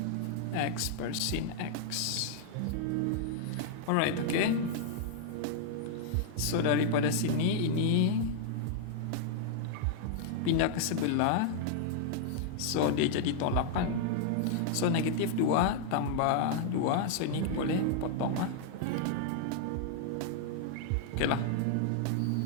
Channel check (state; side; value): different; both; correlation -0.01